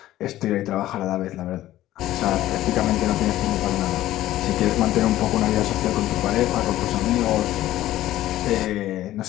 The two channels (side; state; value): right; quieter; 14.5 dB